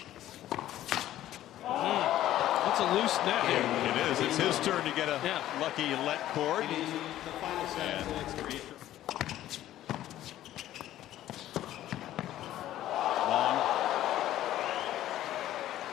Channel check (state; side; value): quieter; right; 13.3 dB